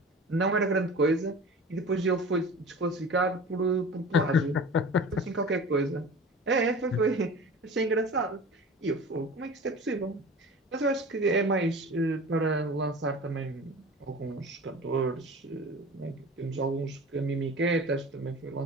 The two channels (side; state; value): both; normal; correlation 0.37